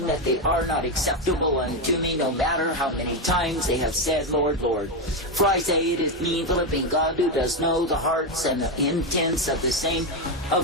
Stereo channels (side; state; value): both; normal; correlation 0.09